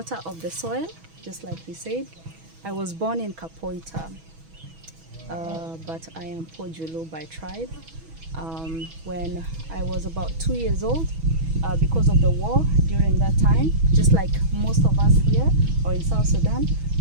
of the soil, just like he said. I was born in Kapoita, but I am Pojulu by tribe. When I was about 2 years old, because of the war during that time, just like most of us here or in South Sudan,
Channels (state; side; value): late; left; 6.2 ms